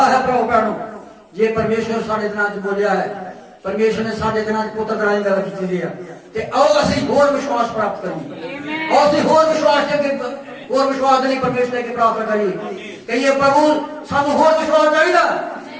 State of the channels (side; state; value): both; identical; correlation 1.00